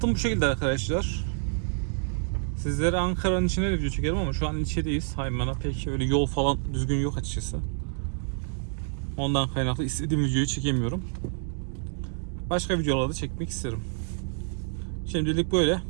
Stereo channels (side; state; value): left; silent; digital silence